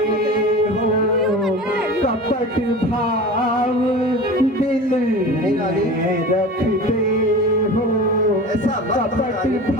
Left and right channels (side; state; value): both; normal; correlation 0.34